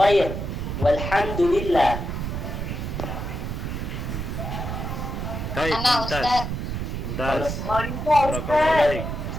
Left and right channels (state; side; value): noise; right; rumble, 4 dB below the sound